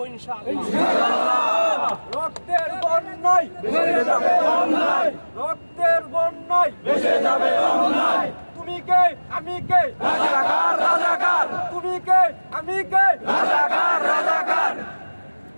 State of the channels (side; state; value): both; inverted; correlation -1.00